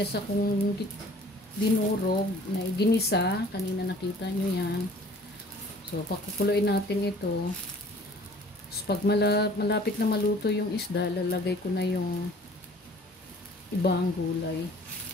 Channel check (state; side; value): normal; both; correlation 0.51